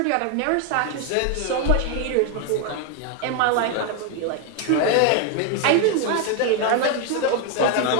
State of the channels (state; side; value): different; both; correlation 0.01